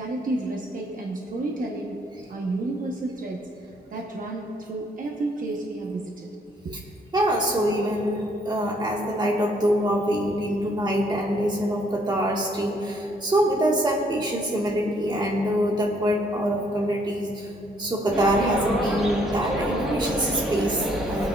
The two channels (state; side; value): normal; both; correlation 0.66